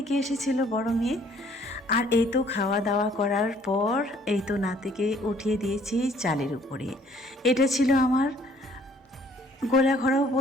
এসেছিল বড় মেয়ে। আর এই তো খাওয়া দাওয়া করার পর এই তো নাতিকে উঠিয়ে দিয়েছি চালের উপরে। এটা ছিল আমার গোলা ঘরেও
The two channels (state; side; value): normal; both; correlation 0.60